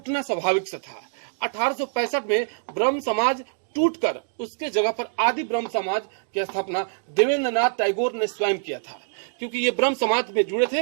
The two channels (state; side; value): silent; left; digital silence